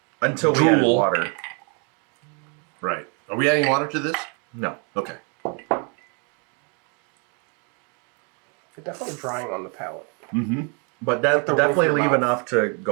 Until we added Drool. water. Right. Are we adding water to this? No. Okay. It's definitely drying on the palate. Mm-hmm. But that the definitely roof of your leave mouth. enough to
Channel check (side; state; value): left; quieter; 36.0 dB